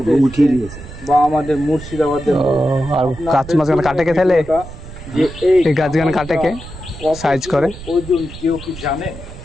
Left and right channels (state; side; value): noise; right; rumble, 14 dB below the sound